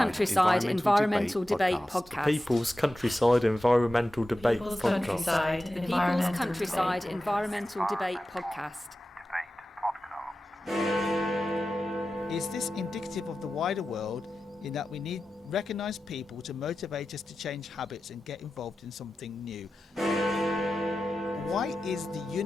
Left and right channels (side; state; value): both; normal; correlation 0.93